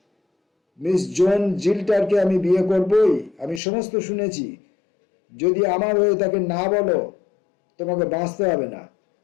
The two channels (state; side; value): drops out; right; at 3.6 s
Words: মিস জোন জিল্টারকে আমি বিয়ে করবই, আমি সমস্ত শুনেছি। যদি আমার হয়ে তাকে না বলো, তোমাকে বাঁচতে হবে না।